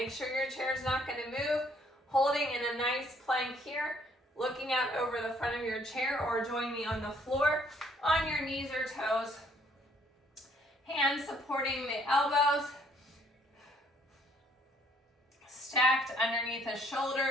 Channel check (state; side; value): normal; both; correlation 0.64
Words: sure your chair is not going to move. Holding in a nice plank here, looking out over the front of your chair, or join me on the floor on your knees or toes. Hands supporting the elbows. Stacked underneath the